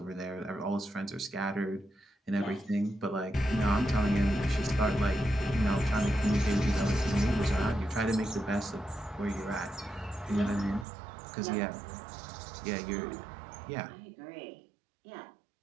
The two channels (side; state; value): left; drops out; at 10.9 s